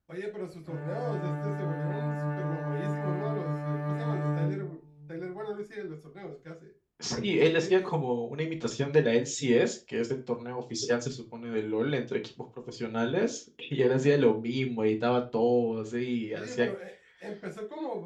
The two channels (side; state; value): both; identical; correlation 1.00